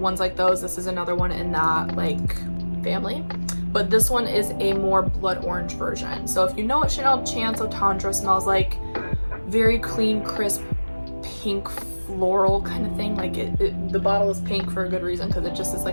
like those. This is another one in that like family, but this one is a more blood orange version. So if you know what Chanel Chance Eau Tendre smells like, very clean, crisp, pink floral kind of thing. Like the bottle is pink for a good reason, because it just is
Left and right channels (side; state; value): both; inverted; correlation -1.00